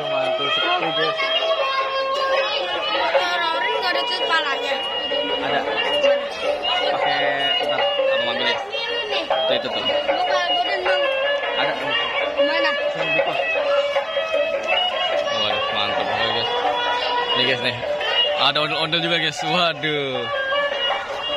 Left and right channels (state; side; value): identical; both; correlation 1.00